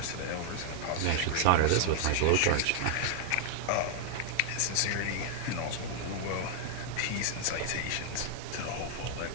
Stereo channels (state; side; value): different; both; correlation 0.00